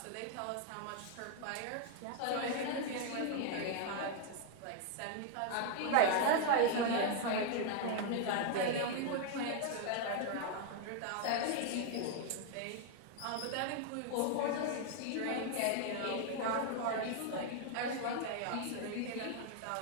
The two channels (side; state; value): both; different; correlation 0.00